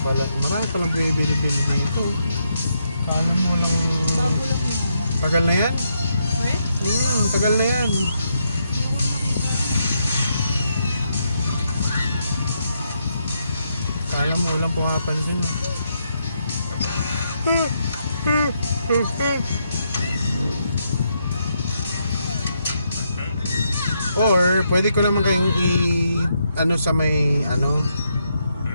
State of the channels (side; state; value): both; inverted; correlation -0.79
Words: pala. Marami palang bibili-bili dito. Kala mo walang... Bago lang yan. Tagal na yan? Wait? Tagal na yan. Kala mo walang pumapansin. Or pwede ko naman kayong ano sa may ano.